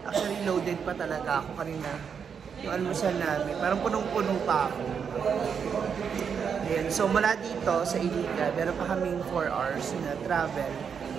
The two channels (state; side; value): quieter; left; 6.8 dB